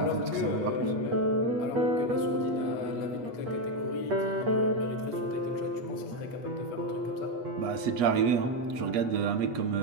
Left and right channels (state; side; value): late; left; 8.3 ms